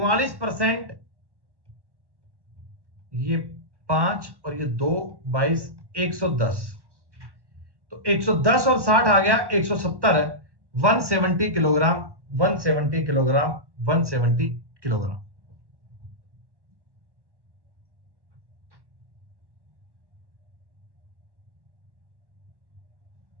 ये 5 और ये 2, 22, 110। तो 110 और 60 आ गया 170। 170 किलोग्राम, 170 किलोग्राम, 170 किलोग्राम।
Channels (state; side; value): late; left; 1.1 ms